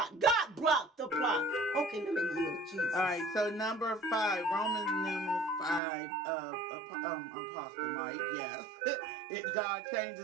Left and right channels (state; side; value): drops out; left; at 5.8 s